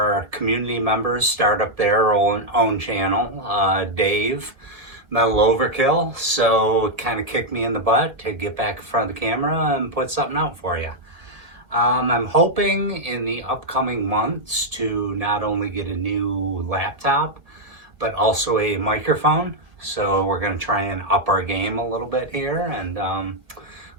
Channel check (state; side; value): late; left; 1.7 ms